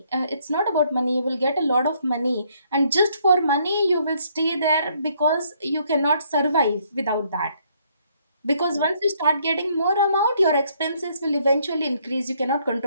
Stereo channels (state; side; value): inverted; both; correlation -0.68